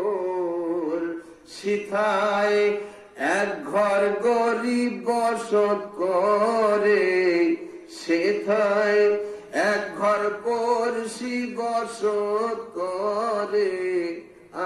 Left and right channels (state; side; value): identical; both; correlation 1.00